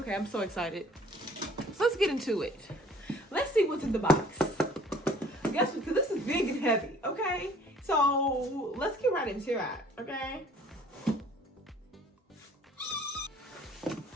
I'm so excited. So let's get into it. Let's see what's in the box. Guess because this is big and heavy, okay? So let's get right into it, okay?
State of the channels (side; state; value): both; normal; correlation 0.54